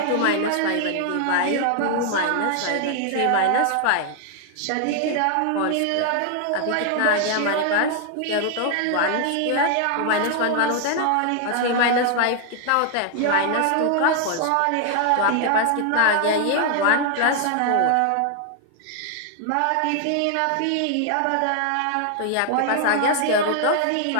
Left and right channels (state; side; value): different; both; correlation 0.00